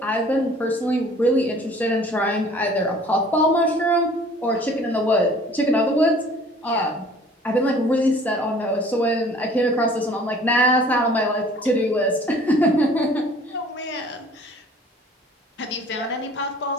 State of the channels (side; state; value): both; normal; correlation 0.52